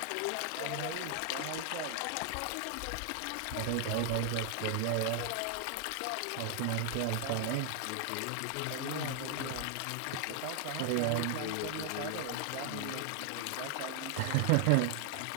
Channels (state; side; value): different; both; correlation 0.00